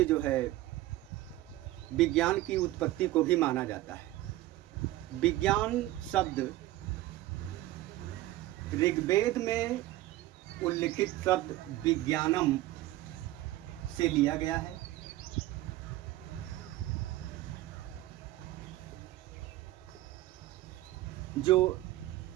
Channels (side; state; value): left; quieter; 16.1 dB